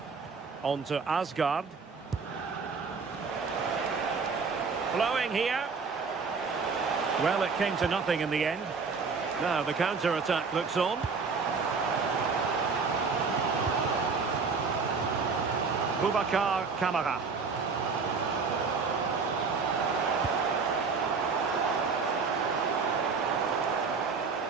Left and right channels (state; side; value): quieter; left; 5.0 dB